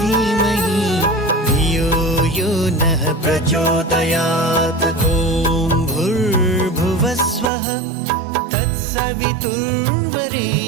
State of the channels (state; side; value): drops out; left; at 7.5 s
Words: धियो यो नः प्रचोदयात्। ॐ भूर्भुवस्वः